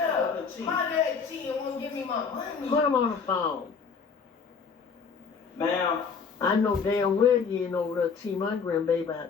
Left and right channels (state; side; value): quieter; right; 5.7 dB